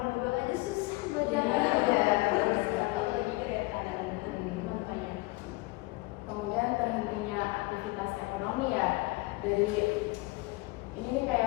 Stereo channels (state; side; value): quieter; right; 23.1 dB